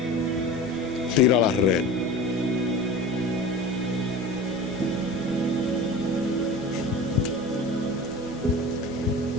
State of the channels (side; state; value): both; normal; correlation 0.35